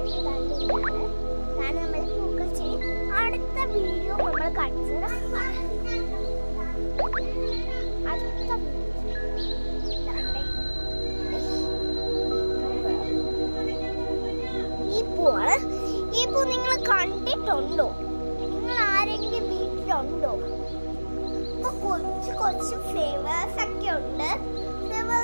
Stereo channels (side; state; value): both; inverted; correlation -1.00